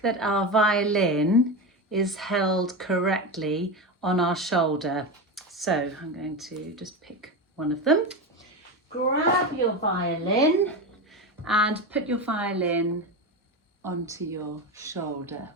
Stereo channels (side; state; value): both; normal; correlation 0.19